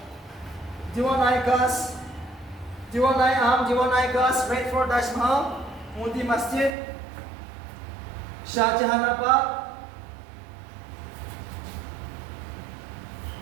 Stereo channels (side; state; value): left; drops out; at 6.8 s